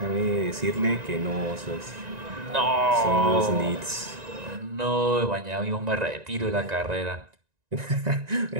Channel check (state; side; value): late; left; 1.9 ms